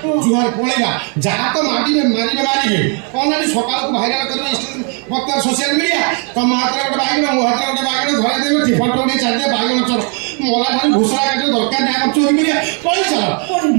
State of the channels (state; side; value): quieter; left; 38.2 dB